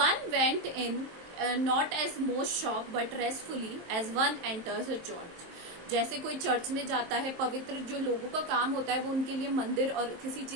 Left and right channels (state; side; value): late; left; 23 ms